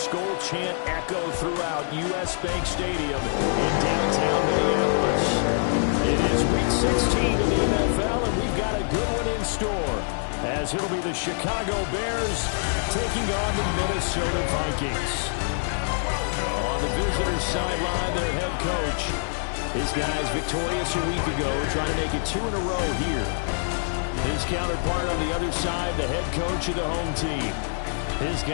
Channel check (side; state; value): right; silent; digital silence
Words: chant echo throughout U.S. Bank Stadium in downtown Minneapolis. It is Week 16 of the NFL, and we've got a good one in store, as it'll be the Chicago Bears taking on the Minnesota Vikings. On the visitors' sideline, their head coach. His guys victorious a week ago, trying to make it 2 in a row here. His counterpart on the other side, the head coach of the home team. His